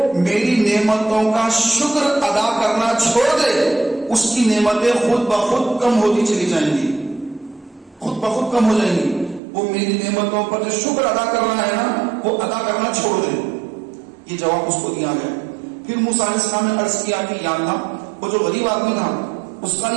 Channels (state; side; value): drops out; left; at 9.4 s